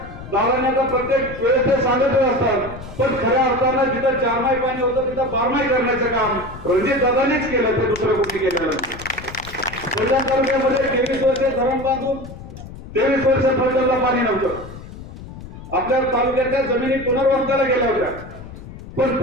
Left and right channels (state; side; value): noise; left; rumble, 14 dB below the sound